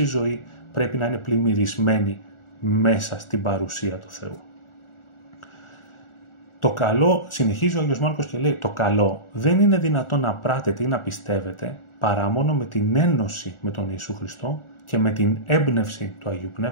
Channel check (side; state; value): right; late; 1.4 ms